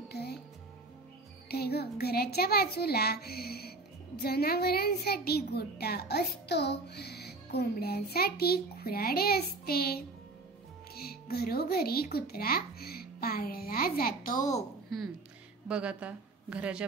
बाजूला जनावरांसाठी गोठा असतो. कोंबड्यांसाठी खुराडे असते. घरोघरी कुत्रा पाळला जातो. बघ, आता घराच्या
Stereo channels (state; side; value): quieter; left; 3.4 dB